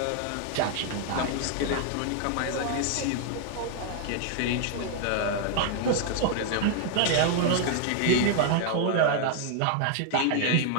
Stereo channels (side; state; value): both; different; correlation 0.00